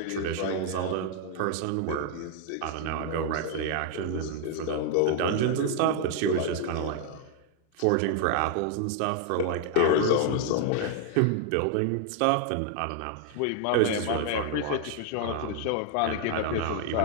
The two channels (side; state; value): both; different; correlation 0.00